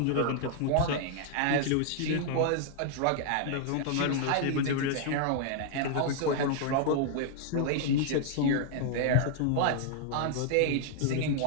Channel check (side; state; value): both; different; correlation -0.01